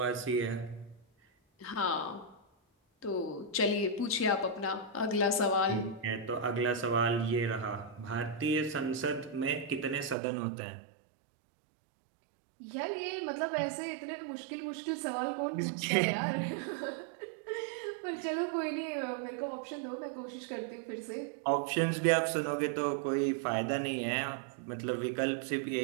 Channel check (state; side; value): drops out; left; at 10.2 s